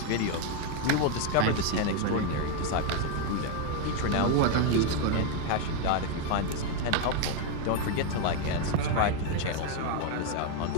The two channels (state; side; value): different; both; correlation 0.01